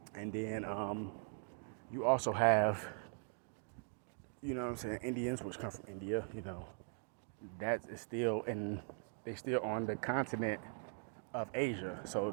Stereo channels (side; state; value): left; silent; 50 dB below the other